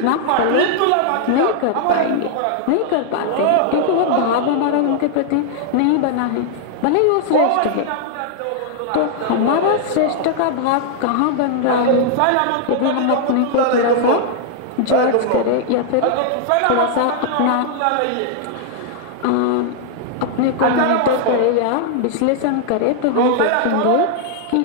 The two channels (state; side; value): different; both; correlation -0.01